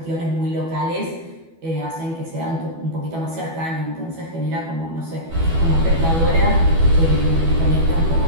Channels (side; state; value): left; late; 12 ms